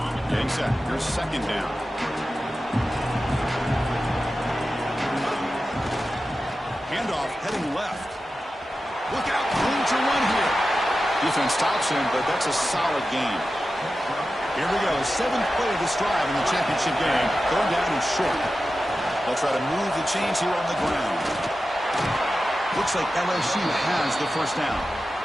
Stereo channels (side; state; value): both; normal; correlation 0.93